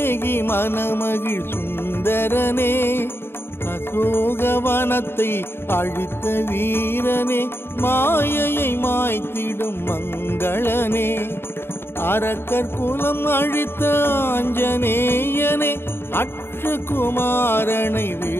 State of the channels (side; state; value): right; late; 0.11 ms